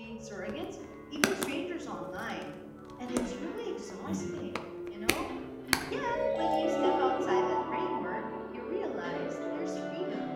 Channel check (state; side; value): identical; both; correlation 1.00